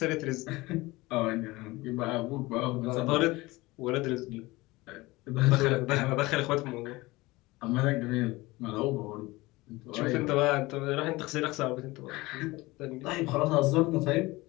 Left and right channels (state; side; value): quieter; right; 21.1 dB